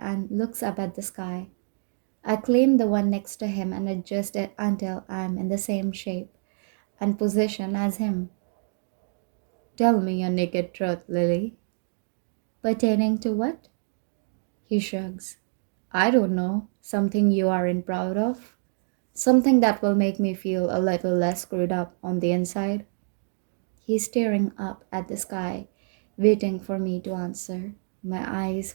and looks up at the sky. I claim the one next to him and adjust it until I'm in the same shape and position as him. Tell me your naked truth, Lily. Pertaining to what? He shrugs. I don't know. Something you aren't proud of? Something that will make me feel a little less screwed up on the inside? He's staring up at the sky, waiting for me to answer. My eyes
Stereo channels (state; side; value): silent; left; digital silence